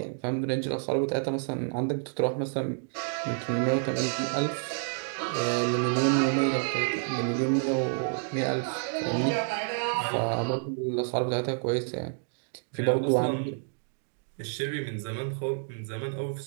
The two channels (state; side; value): silent; left; digital silence